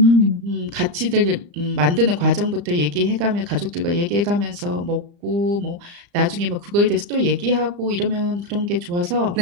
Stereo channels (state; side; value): late; left; 35 ms